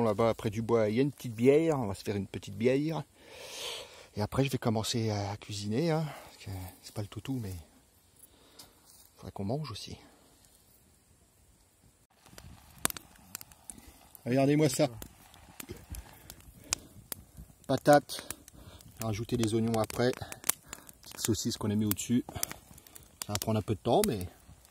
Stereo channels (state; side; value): identical; both; correlation 1.00